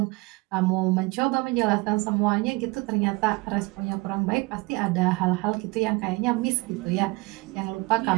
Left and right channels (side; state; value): left; quieter; 24.3 dB